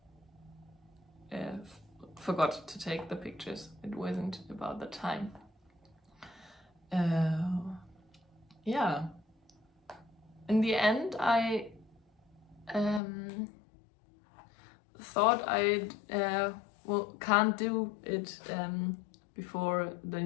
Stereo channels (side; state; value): right; drops out; at 13.0 s